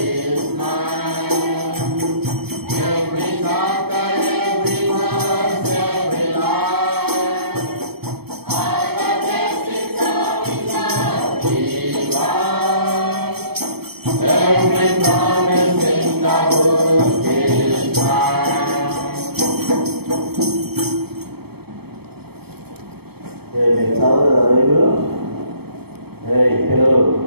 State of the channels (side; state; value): left; late; 0.97 ms